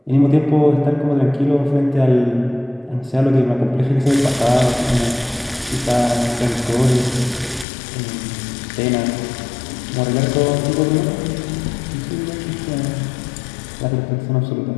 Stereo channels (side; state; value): right; drops out; at 7.7 s